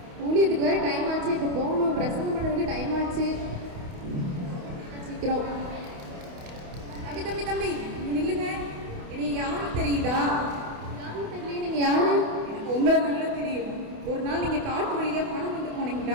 ஊழியத்துக்கு வேறு டைம் ஆச்சு, இப்போ போகணும், பிரசங்கம் பண்ணுறதுக்கு டைம் ஆச்சு, சீக்கிரம். தம்பி தம்பி தம்பி இங்க நில்லுங்க. இனி யாரும் தெரியுதா? யாரும் தெரியல. நீங்கள் யாரு? எனக்கு உங்களை நல்லா தெரியும். ஒரு நாள் நீங்க காட்டு வழியா பணம் கொண்டு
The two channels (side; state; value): left; late; 28 ms